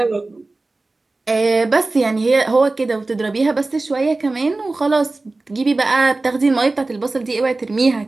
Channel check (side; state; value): left; quieter; 3.2 dB